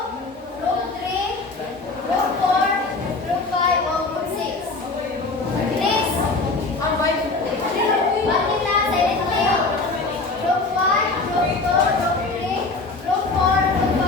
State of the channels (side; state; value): right; quieter; 3.6 dB